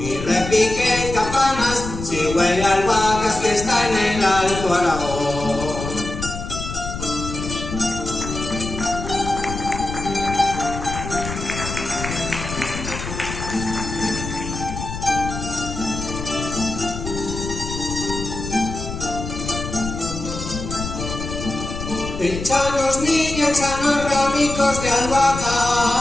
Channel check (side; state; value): left; noise; rumble, 7 dB below the sound